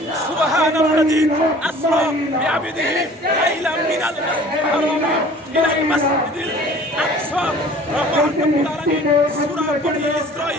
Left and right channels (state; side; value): normal; both; correlation 0.48